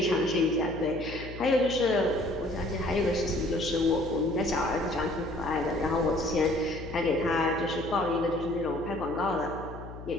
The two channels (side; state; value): left; noise; hum, 13 dB below the sound